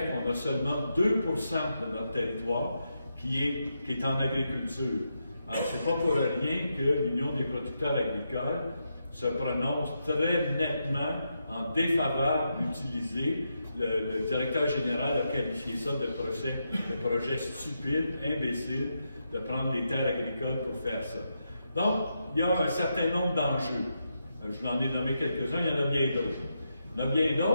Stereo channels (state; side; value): inverted; both; correlation -0.84